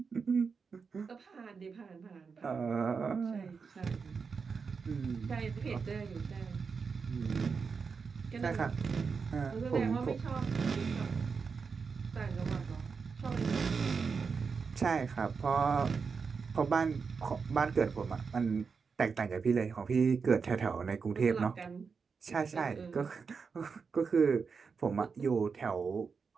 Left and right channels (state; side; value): quieter; left; 5.4 dB